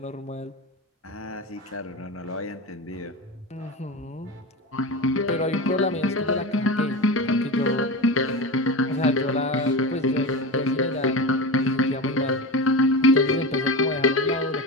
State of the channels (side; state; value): both; normal; correlation 0.23